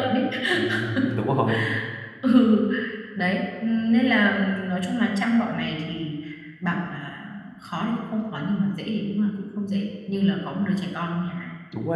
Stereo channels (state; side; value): identical; both; correlation 1.00